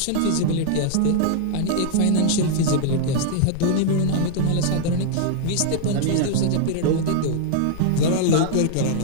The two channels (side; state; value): both; different; correlation -0.01